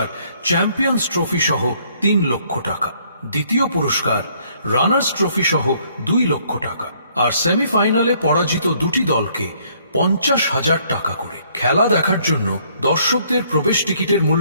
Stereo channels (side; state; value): both; inverted; correlation -0.65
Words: চ্যাম্পিয়ন্স ট্রফি সহ 3 লক্ষ টাকা, দ্বিতীয় পুরস্কার রানার্স ট্রফি সহ 2 লক্ষ টাকা, আর সেমিফাইনালে পরাজিত দুটি দলকে 50,000 টাকা করে। খেলা দেখার জন্য দর্শকদের প্রবেশ টিকিটের